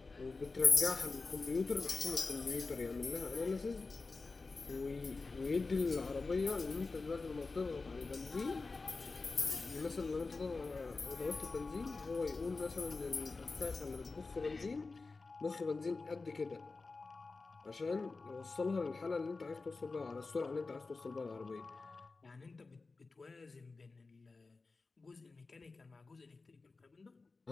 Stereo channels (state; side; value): quieter; right; 3.9 dB